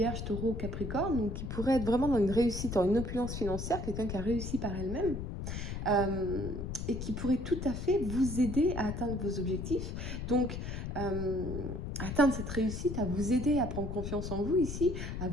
Taureau, Capricorne, donc qui pourrait être vraiment dans une réussite, dans une opulence financière, quelqu'un qui a réussi par elle-même. Et qui pourrait tout à fait vous aider à atteindre vos objectifs. Donc, atteindre cette réussite, à vous aider à prendre confiance en vous ici, à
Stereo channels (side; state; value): left; noise; rumble, 5 dB below the sound